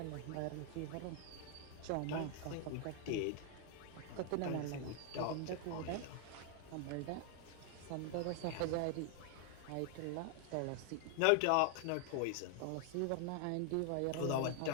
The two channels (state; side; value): different; both; correlation 0.00